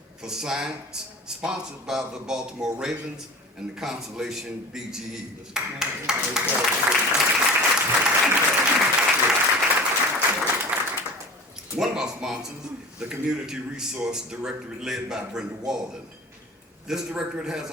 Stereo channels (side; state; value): both; normal; correlation 0.37